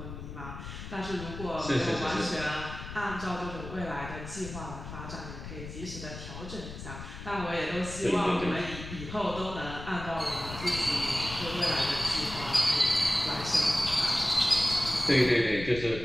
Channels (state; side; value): noise; left; rumble, 10 dB below the sound